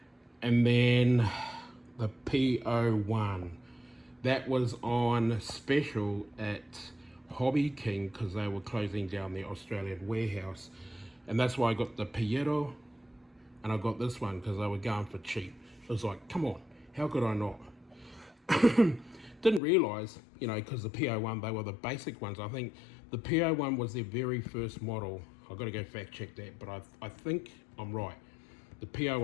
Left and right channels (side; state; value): right; drops out; at 19.6 s